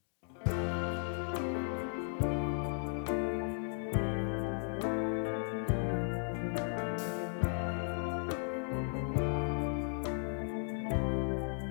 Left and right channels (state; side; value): silent; right; 54 dB below the other